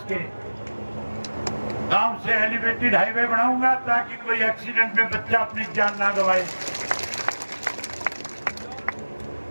गांव से एलिवेटेड हाईवे बनाऊंगा ताकि कोई एक्सीडेंट में बच्चा अपनी जान ना गवाए।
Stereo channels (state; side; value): inverted; both; correlation -1.00